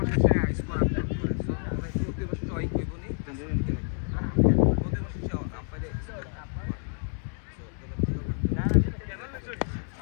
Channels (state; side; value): silent; right; 59 dB below the other